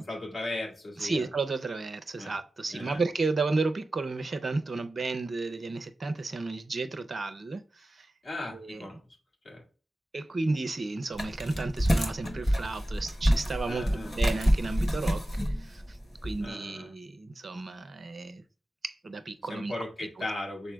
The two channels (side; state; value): both; normal; correlation 0.94